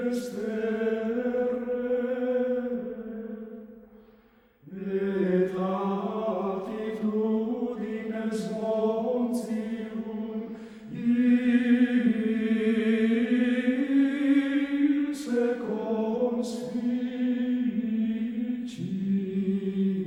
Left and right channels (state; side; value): identical; both; correlation 1.00